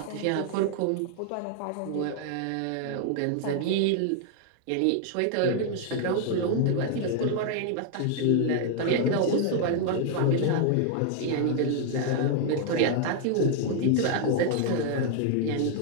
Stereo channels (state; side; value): different; both; correlation 0.00